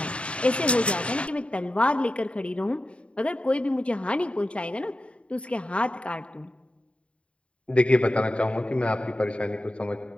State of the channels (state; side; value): late; right; 0.060 ms